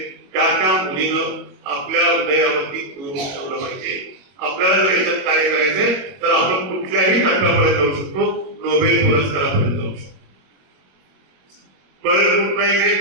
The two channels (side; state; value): left; late; 21 ms